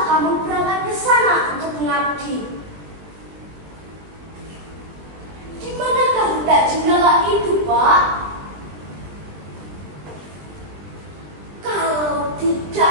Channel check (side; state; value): left; late; 20 ms